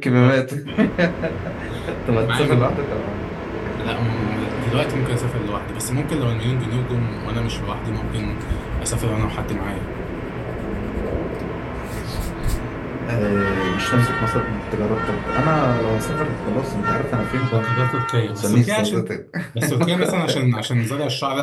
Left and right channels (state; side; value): identical; both; correlation 1.00